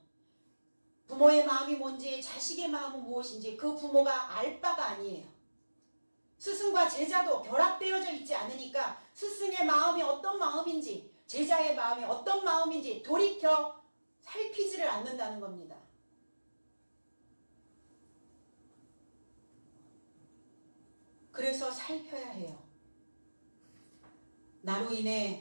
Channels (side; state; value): both; inverted; correlation -1.00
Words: 부모의 마음이 뭔지 자식의 마음은 무엇인지 그 부모가 알 바가 아니에요. 스승과 제자도 결합되어져 있지 않으니까 스승의 마음이 어떤 마음인지 제자의 마음이 어떤 마음인지 돌이켜 살피지를 않는다는 겁니다. 그래서 살펴야 해요. 나로